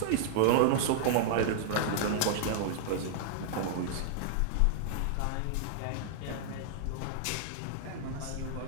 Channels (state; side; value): different; both; correlation -0.01